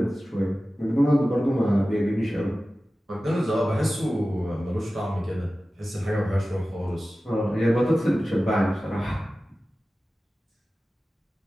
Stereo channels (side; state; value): both; normal; correlation 0.95